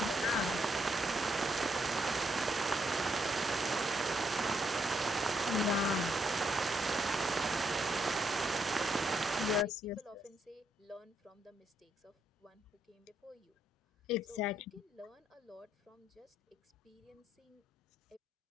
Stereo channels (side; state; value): both; normal; correlation 0.76